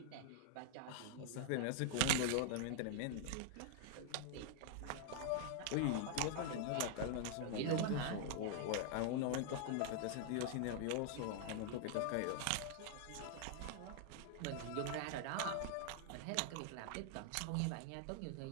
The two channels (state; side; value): different; both; correlation 0.00